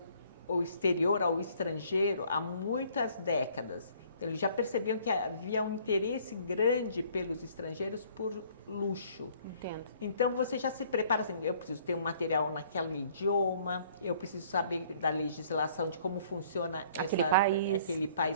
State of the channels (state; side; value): inverted; both; correlation -0.59